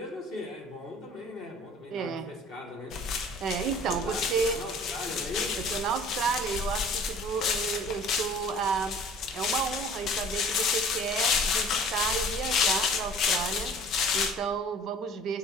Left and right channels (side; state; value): both; normal; correlation 0.48